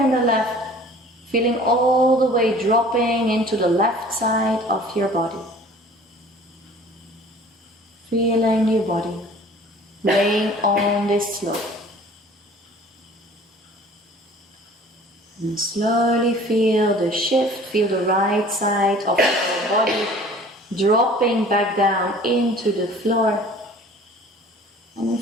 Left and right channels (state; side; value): normal; both; correlation 0.48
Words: the left, feeling all the way dropping into the left side of your body. Feeling your body laying on this slope. And slowly feel the shift, feel the right side of your body dropping back down into the floor. And